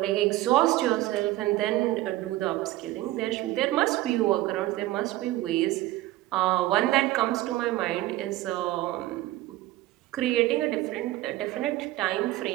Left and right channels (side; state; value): left; quieter; 16.6 dB